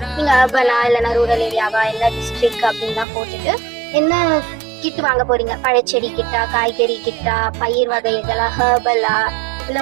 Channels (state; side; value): drops out; left; at 3.1 s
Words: நீங்கள் அர்பனா இல்லைனா ரூரல் ஏரியாவா இல்லை டிஸ்ட்ரிக்ட் அப்படின்லாம் போட்டுட்டு என்ன கிட் வாங்க போறீங்க, பழச்செடி கிட்டா, காய்கறி கிட்டா, பயிர் வகைகளா, ஹெர்பலா,